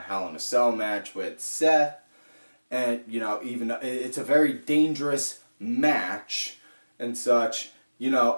in a Cell match with Seth. And, you know, even though it's a very dangerous match and such, you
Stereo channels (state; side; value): inverted; both; correlation -1.00